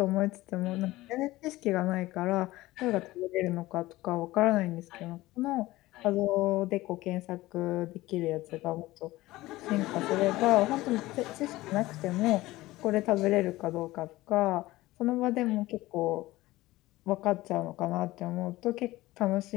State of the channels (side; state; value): right; quieter; 18.2 dB